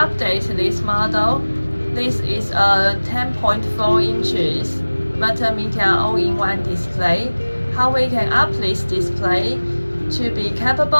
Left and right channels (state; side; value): inverted; both; correlation -1.00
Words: this model. This is a 10.4 inches multimedia all-in-one display. How we can up this display to be